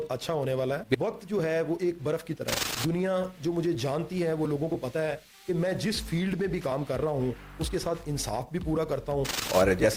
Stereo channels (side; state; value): both; identical; correlation 1.00